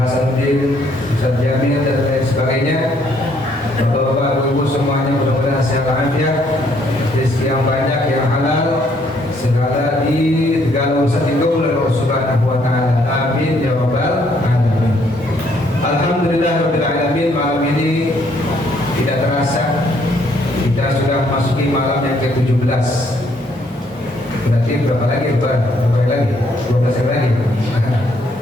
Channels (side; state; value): both; normal; correlation 0.68